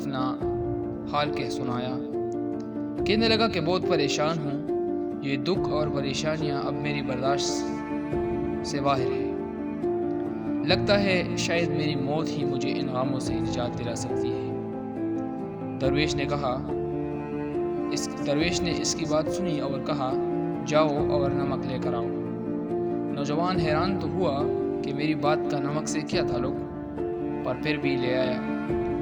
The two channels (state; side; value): identical; both; correlation 1.00